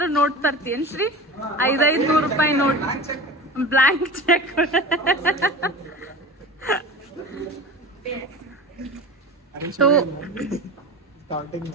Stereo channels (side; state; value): both; normal; correlation 0.32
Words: ನೋಟ್ ತರ್ತೀನಿ ಶ್ರೀ. 500 ರೂಪಾಯಿ ನೋಟ್, ಬ್ಲಾಂಕ್ ಚೆಕ್. ಸೊ